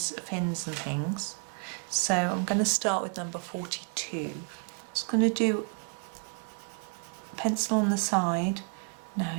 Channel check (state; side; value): quieter; left; 37.2 dB